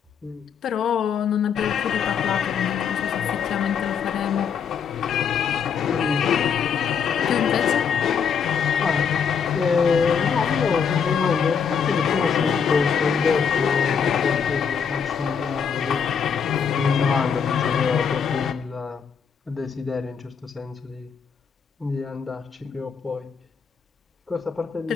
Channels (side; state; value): right; quieter; 6.8 dB